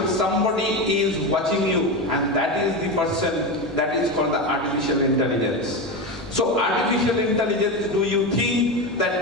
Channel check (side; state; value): both; normal; correlation 0.18